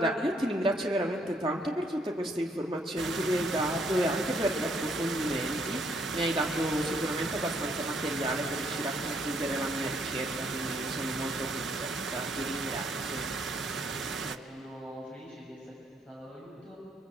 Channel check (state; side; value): normal; both; correlation 0.69